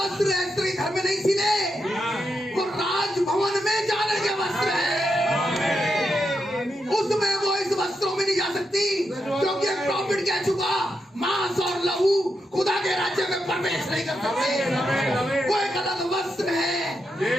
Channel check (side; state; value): both; normal; correlation 0.85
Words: एस्तर के घर में नहीं सिले। वो राजभवन में जाने के वस्त्र है। उसमें वो इस वस्त्रों में नहीं जा सकती क्योंकि एक प्रॉफिट कह चुका मांस और लहू खुदा के राज्य में प्रवेश नहीं कर सकते। वो एक अलग वस्त्र है